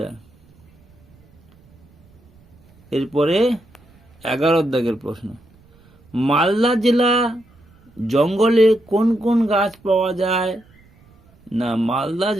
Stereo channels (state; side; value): noise; right; rumble, 29 dB below the sound